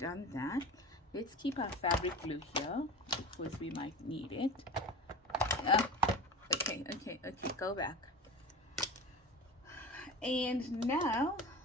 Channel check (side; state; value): both; normal; correlation 0.32